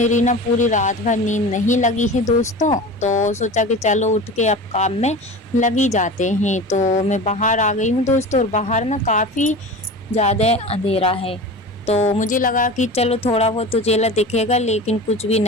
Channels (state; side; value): normal; both; correlation 0.33